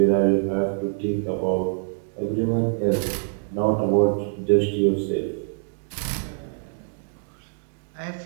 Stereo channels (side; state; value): left; silent; 62 dB below the other